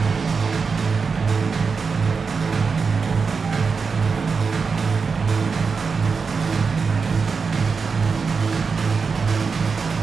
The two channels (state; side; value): quieter; left; 5.1 dB